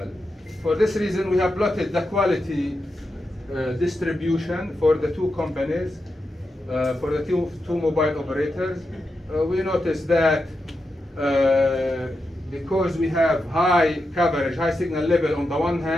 For this reason, we have plotted the quality distribution for the two companies, for the two mobile operators. We notice that because we have high coverage, high signal level on the one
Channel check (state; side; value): normal; both; correlation 0.87